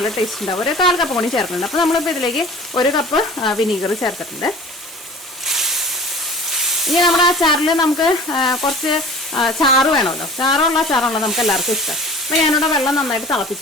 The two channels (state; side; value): normal; both; correlation 0.42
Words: ടേസ്റ്റ് ഉണ്ടാവും. ഒരു 1/4 കപ്പ് കൂടി ചേർക്കുന്നുണ്ട്. അപ്പോൾ നമ്മളിപ്പോൾ ഇതിലേക്ക് 1 കപ്പ് വിനീഗർ ചേർത്തിട്ടുണ്ട്. ഇനി നമ്മുടെ അച്ചാറിൽ നമുക്ക് കുറച്ച് ചാറ് വേണമല്ലോ. ചാറുള്ള അച്ചാറാണല്ലോ നമുക്ക് എല്ലാവർക്കും ഇഷ്ടം. അപ്പോൾ ഞാനിവിടെ വെള്ളം നന്നായിട്ട്